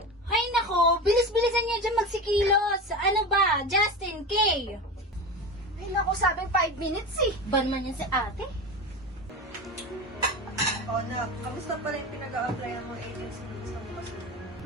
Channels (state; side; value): normal; both; correlation 0.26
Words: Ay nako, bilis-bilisan niya dyan magsikilos. Ano ba? Justin, Kay? Ay, naku, sabing 5 minutes eh. Ban man yan si ate? O nak, kamusta pala yung pinag-a-applyan mo agency dun sa bukas mo?